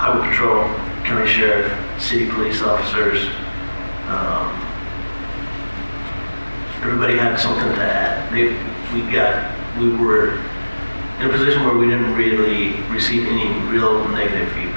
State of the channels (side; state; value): both; inverted; correlation -1.00